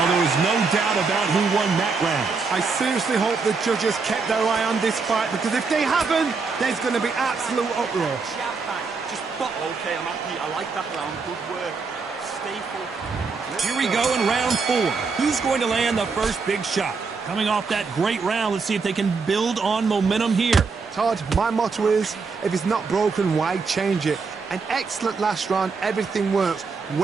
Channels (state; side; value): quieter; left; 4.7 dB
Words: there was no doubt about who won that round. I seriously hope the judges kept their eye on this fight because if they haven't, there's going to be absolute uproar. Just, but okay, I'm happy. I like that round. Good work. Stay focused. Here we go in round 4. Who's going to land the first big shot? Coming off that great round, let's see if they can build on momentum here. Todd, my motto is, if it's not broken, why change it? An excellent last round, everything works.